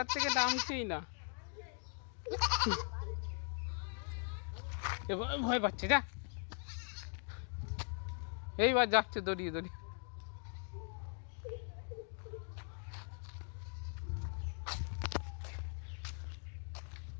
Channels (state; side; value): silent; right; 51 dB below the other